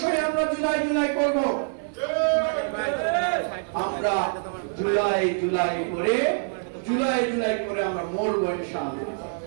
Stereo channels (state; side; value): silent; left; 58 dB below the other